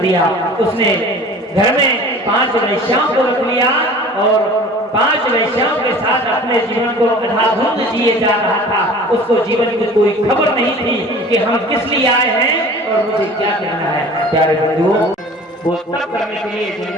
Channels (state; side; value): normal; both; correlation 0.43